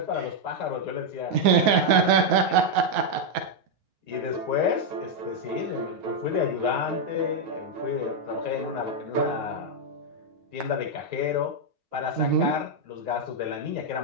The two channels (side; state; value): left; late; 9.3 ms